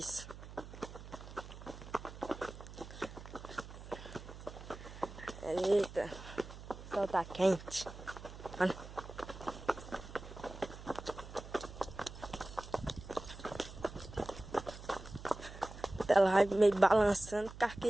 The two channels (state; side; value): noise; right; hum, 13 dB below the sound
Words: Eita, o sol tá quente. Olha. Ela vai meio balançando,